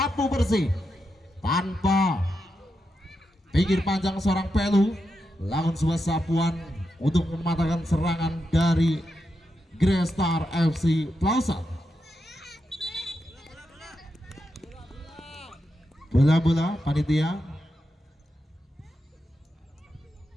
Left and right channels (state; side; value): normal; both; correlation 0.86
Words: bersih tanpa pikir panjang seorang Pelu. Lawan sebuah sapuan untuk mematahkan serangan dari Grestar FC Plausan. Bola-bola panitia.